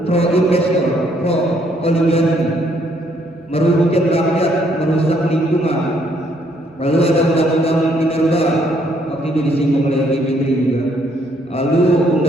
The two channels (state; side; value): normal; both; correlation 0.69